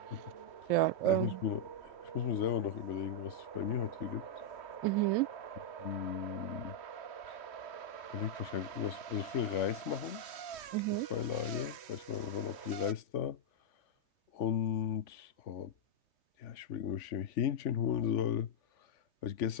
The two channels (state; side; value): late; right; 3.1 ms